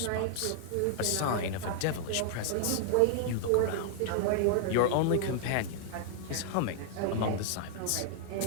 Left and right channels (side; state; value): both; different; correlation -0.01